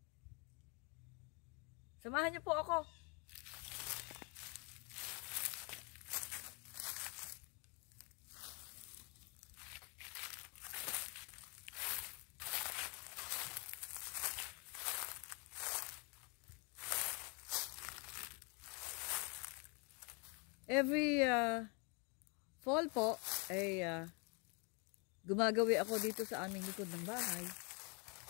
Samahan niyo po ako. Every fall po ay gumagawi ako dito sa aming likod ng bahay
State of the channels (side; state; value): right; quieter; 33.6 dB